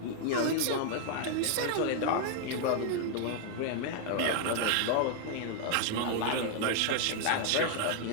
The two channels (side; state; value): both; different; correlation 0.00